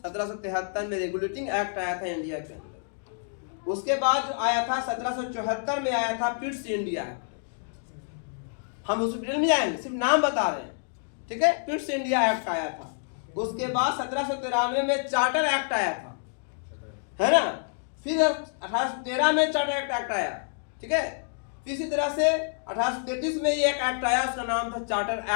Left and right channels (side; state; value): right; silent; digital silence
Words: 1773 में रेगुलेटिंग एक्ट आया था इंडिया के अंदर। उसके बाद जो आया था 1774 में आया था पिट्स इंडिया एक्ट। हम उस डिटेल में जाएंगे, सिर्फ नाम बता रहे हैं, ठीक है। पिट्स इंडिया एक्ट आया था। उसके बाद 1793 में चार्टर एक्ट आया था, है ना। फिर 1813 में चार्टर एक्ट आया, ठीक है। इसी तरह से 1833 में ये एक एक्ट आया, उसका नाम था चार्टर